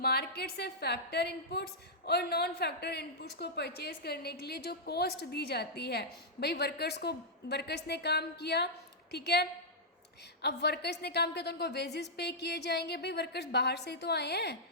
से फैक्टर इनपुट्स और नॉन फैक्टर इनपुट्स को परचेज करने के लिए जो कॉस्ट दी जाती है, भाई वर्कर्स ने काम किया, ठीक है, अब वर्कर्स ने काम किया तो उनको वेजेस पे किए जाएंगे। भाई वर्कर्स बाहर से ही तो आए हैं,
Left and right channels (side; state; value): both; normal; correlation -0.10